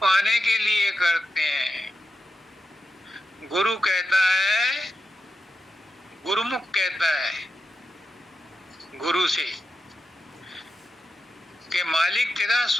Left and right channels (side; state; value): both; normal; correlation 0.89